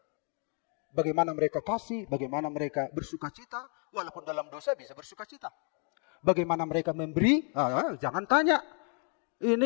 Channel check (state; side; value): quieter; right; 39.5 dB